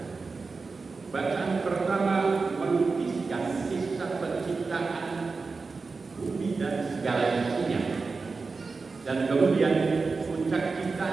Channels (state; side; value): quieter; left; 4.3 dB